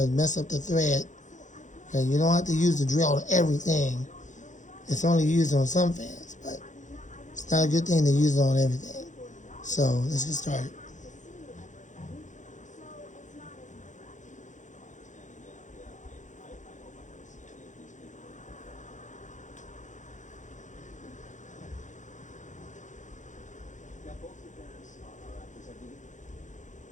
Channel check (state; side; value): late; right; 0.36 ms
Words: mess up the thread. Okay, you don't have to use the drill on everything. It's only used on some fans, but it's not a good thing to use it on everything. So let's get started.